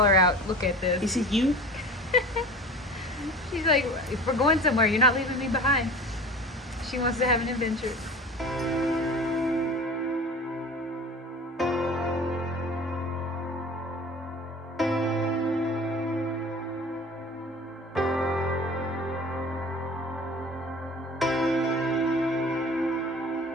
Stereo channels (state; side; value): normal; both; correlation 0.39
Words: out, look at this. Is it you? She's like, if we're going somewhere, you're not leaving me behind. She wants to have an adventure.